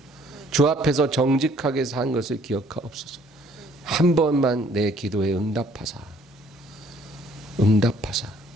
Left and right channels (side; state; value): both; normal; correlation 0.61